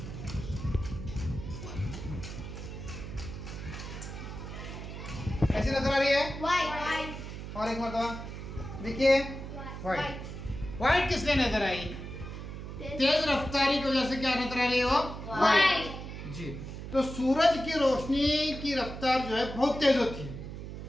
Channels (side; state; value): right; noise; hum, 9 dB below the sound